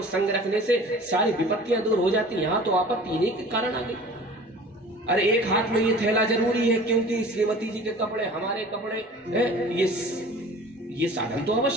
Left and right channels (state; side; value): normal; both; correlation 0.44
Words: संग रखने से सारी विपत्तियां दूर हो जाती, यहाँ तो आपत्ति इन्हीं के कारण आ गई। अरे एक हाथ में ये थैला जरूरी है, क्योंकि श्रीमती जी के कपड़े हमारे कपड़े हैं, ये साधन तो